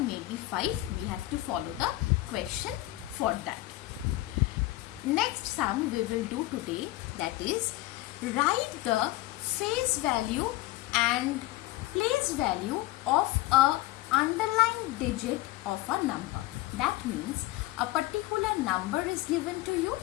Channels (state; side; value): quieter; right; 18.0 dB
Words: 5. We have to follow the question for that. Next sum we will do today, that is write the face value and place value of a underlined digit of a number. That means a particular number is given to you.